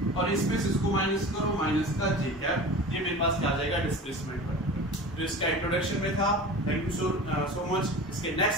और इसमें से इसको माइनस करो, माइनस का j कैप। ये मेरे पास क्या आ जाएगा, डिस्प्लेसमेंट वेक्टर। तो इसका इंट्रोडक्शन में था। Thank you so much. इसके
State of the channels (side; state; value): both; normal; correlation 0.35